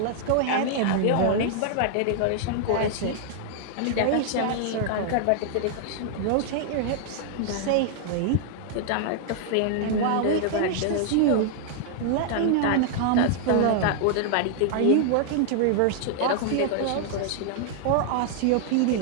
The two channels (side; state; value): both; different; correlation -0.01